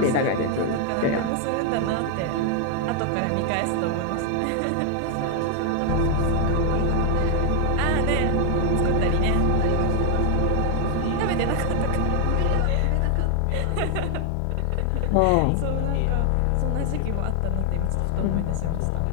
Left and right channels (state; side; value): different; both; correlation 0.00